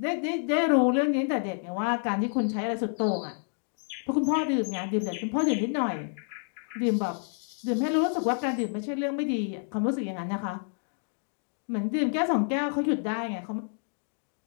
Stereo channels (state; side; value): silent; right; 59 dB below the other